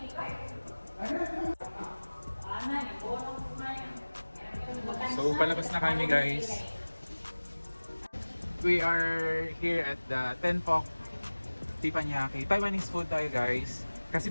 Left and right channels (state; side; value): inverted; both; correlation -1.00